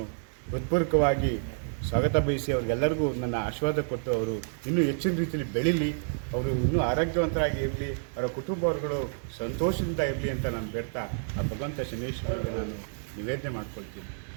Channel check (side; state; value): left; silent; digital silence